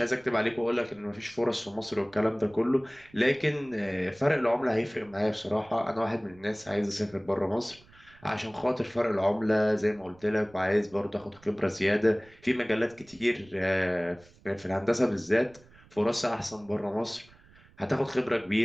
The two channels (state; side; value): noise; right; rumble, 27 dB below the sound